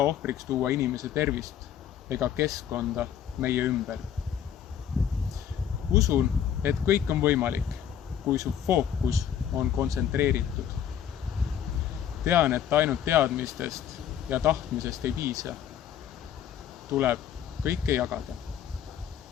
ohvriks tuua inimese tervist ega keskkonda meie ümber. Usun, et kõik on võimalik, kui su fookus on kontsentreeritud. Tean, et ainult teadmistest ja tahtmisest ei piisa. Tuleb kõike jagada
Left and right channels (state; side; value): quieter; right; 9.4 dB